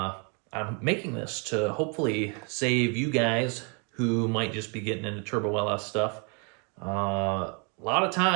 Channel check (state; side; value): quieter; left; 35.7 dB